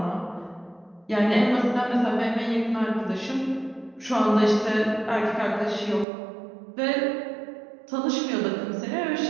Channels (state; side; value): drops out; left; at 6.1 s